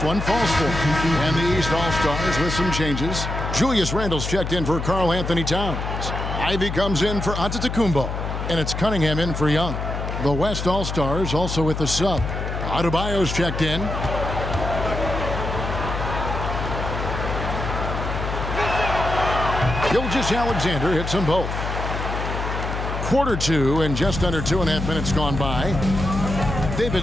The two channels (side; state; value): left; noise; hum, 4 dB below the sound